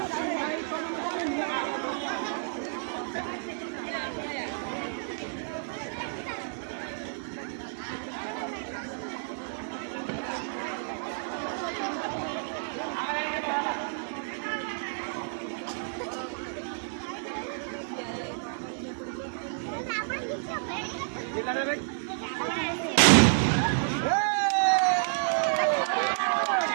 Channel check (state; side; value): silent; left; digital silence